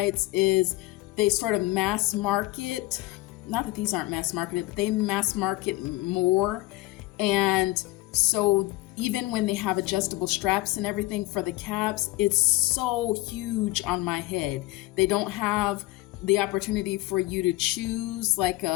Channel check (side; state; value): right; quieter; 19.5 dB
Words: is they sort of mass market, not that these aren't mass marketed, but they mass market more. And so even when they have adjustable straps and everything for the caps, it's so huge on my head. They don't have the opportunity for you to choose like